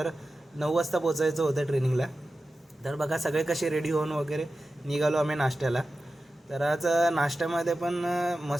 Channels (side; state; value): both; normal; correlation 0.93